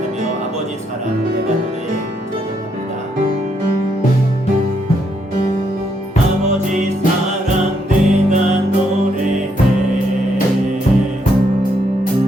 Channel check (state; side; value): normal; both; correlation 0.75